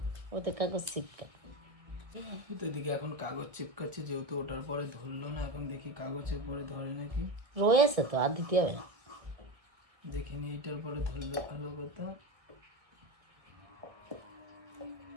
ওতে কাগজ চিপকা। এদিকে এখন কাগজ চিপকাচ্ছে, যেহেতু ওটার পরে ধরলো না, এখন দেখি কাগজের পরে ধরে নাকি। রয়েছে তো, আর দিতে হবে না। দেখিনি এইটার পরে ধরলে ভালো কথা।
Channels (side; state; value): left; late; 1.9 ms